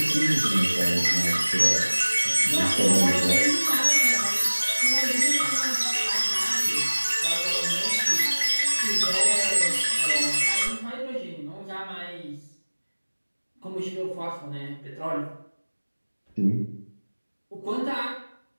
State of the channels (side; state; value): both; inverted; correlation -1.00